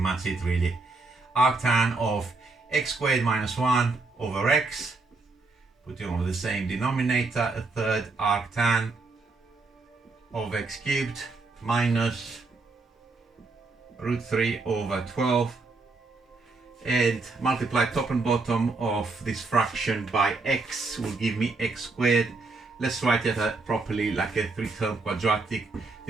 it really. Arctan of x squared minus 1 over x, putting over the same denominator, a third arctan of x cubed minus root 3 over 12, and multiply top and bottom of this fraction by x will give me x squared. Let's write it properly like a 3-term quadratic.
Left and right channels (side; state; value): left; quieter; 3.7 dB